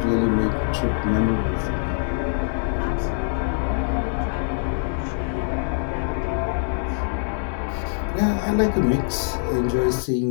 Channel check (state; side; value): silent; right; digital silence